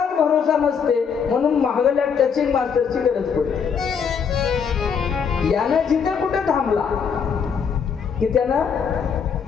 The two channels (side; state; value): right; quieter; 6.6 dB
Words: भरोसा नसते म्हणून महागल्या टचिंग मास्टरची गरज पडते. यानं जिथे कुठे थांबला की त्यानं